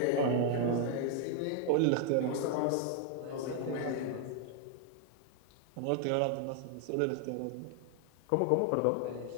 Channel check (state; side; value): different; both; correlation 0.00